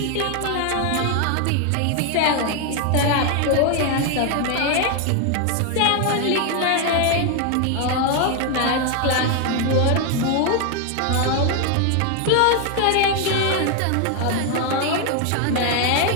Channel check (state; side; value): different; both; correlation 0.01